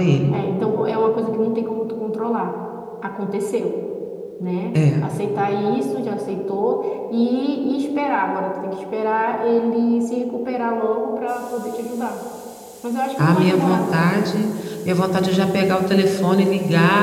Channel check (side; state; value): both; identical; correlation 1.00